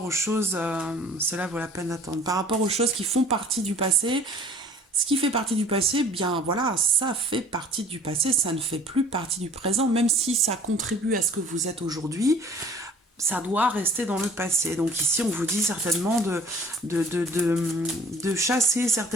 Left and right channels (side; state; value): both; normal; correlation 0.50